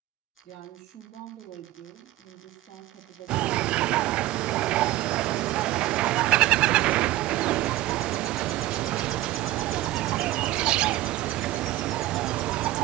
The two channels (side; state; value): left; quieter; 15.7 dB